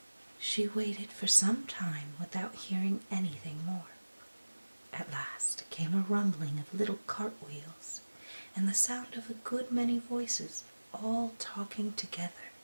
She waited for some time without hearing anything more. At last came a rumbling of little cartwheels and the sound of a good many voices all talking together.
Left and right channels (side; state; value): both; inverted; correlation -1.00